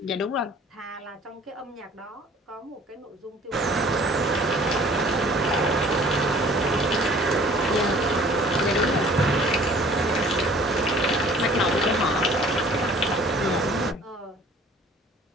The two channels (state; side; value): normal; both; correlation 0.52